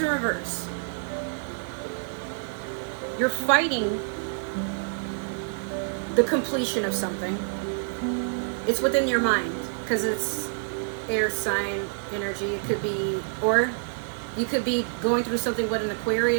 reverse. You're fighting the completion of something. It's within your mind, because it's air sign energy. It could be, or you could be going through something with an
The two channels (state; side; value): silent; left; digital silence